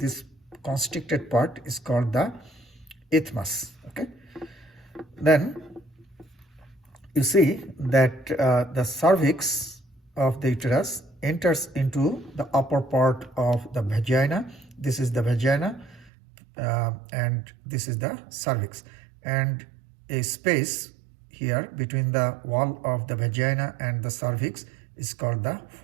constricted part is called the isthmus. Okay, then you see that the cervix of the uterus enters into the upper part of the vagina. This is the vagina and this is the cervix, and a space here between the wall of the vagina and the cervix is called the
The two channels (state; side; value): drops out; left; at 16.1 s